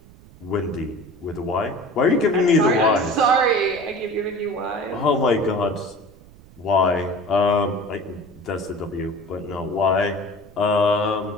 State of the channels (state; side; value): noise; right; rumble, 23 dB below the sound